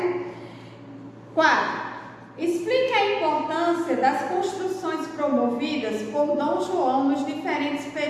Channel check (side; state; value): both; identical; correlation 1.00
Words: 4. Explique a importância das construções promovidas por Dom João nos diferentes